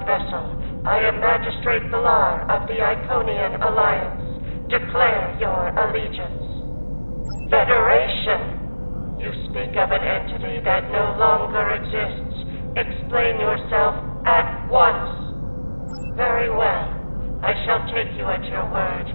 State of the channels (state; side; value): inverted; both; correlation -1.00